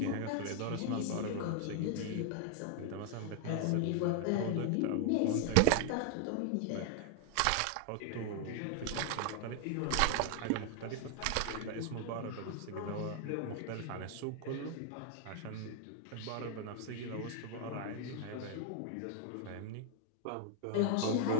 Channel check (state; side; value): different; both; correlation 0.00